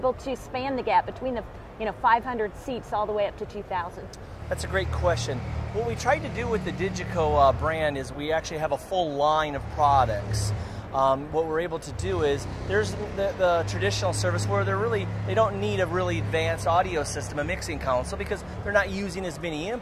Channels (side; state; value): both; identical; correlation 1.00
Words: to span the gap between the 500 seats all the way up to 2,000. That's a great question. What we tried to do with the Digico brand is we actually have a full line of products. What we're able to do is there's the traditional service where they don't need a really advanced audio system, a mixing console, because they're not using as many